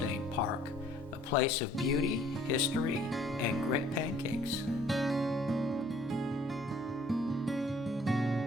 Park, a place of beauty, history, and great pancakes.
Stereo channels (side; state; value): both; normal; correlation 0.58